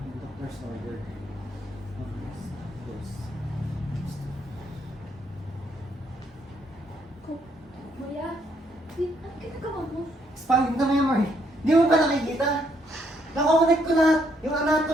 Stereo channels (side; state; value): both; normal; correlation 0.72